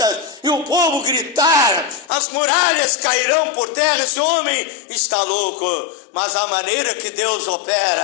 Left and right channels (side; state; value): right; drops out; at 2.1 s